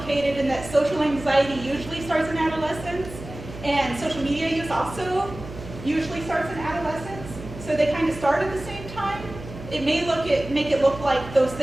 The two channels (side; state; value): right; noise; hum, 13 dB below the sound